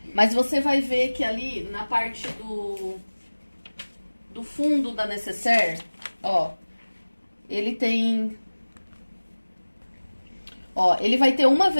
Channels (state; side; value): inverted; both; correlation -1.00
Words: Mas você vai ver que ali na parte do fundo da necessaire, ó, ele tem... Ó, ele vai ter uma